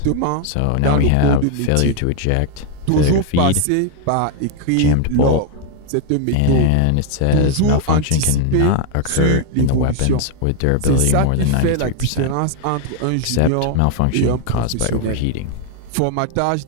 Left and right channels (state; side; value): different; both; correlation 0.00